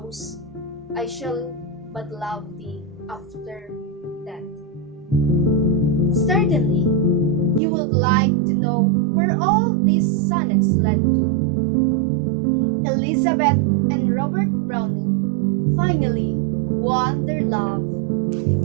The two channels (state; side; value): drops out; left; at 7.6 s